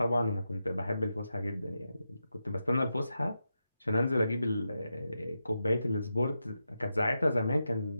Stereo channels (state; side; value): inverted; both; correlation -0.88